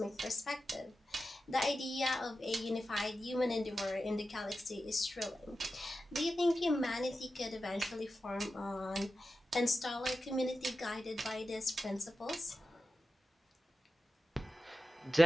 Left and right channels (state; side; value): normal; both; correlation 0.92